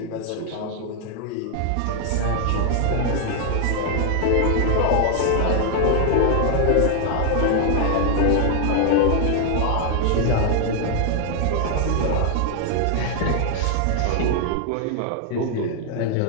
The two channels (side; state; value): both; different; correlation 0.00